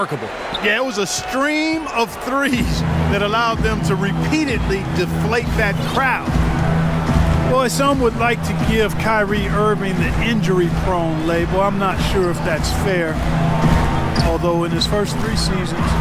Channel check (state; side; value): identical; both; correlation 1.00